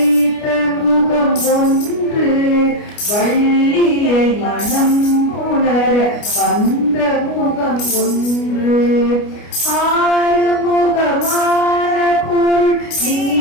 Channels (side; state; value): right; late; 29 ms